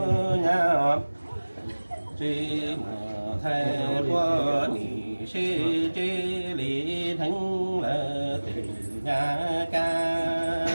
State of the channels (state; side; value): inverted; both; correlation -1.00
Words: nhà chi mùa thay qua ni xê chê lý thánh là từ nhà